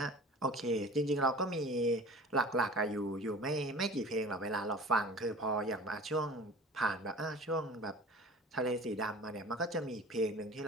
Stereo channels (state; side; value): normal; both; correlation 0.41